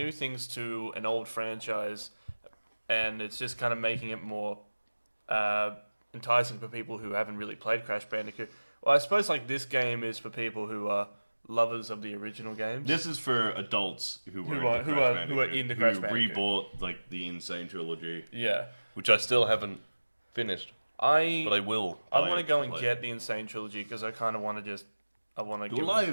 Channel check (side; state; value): both; inverted; correlation -1.00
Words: things to an old franchise, and it's just kind of making it more enticing for people who haven't really played Crash Bandicoot. Well, I suppose like this game is for people who are lovers of the original games. This is for adults who are into Crash Bandicoot. Rebought like the Insane trilogy, Yeah. which I still haven't finished, but I will. I want to go and get the Insane trilogy because I kind of want to do a